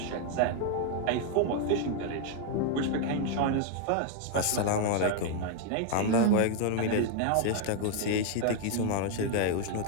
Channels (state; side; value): different; both; correlation 0.00